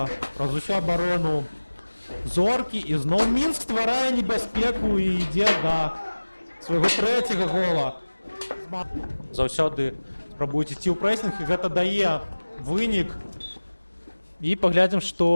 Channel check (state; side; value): inverted; both; correlation -1.00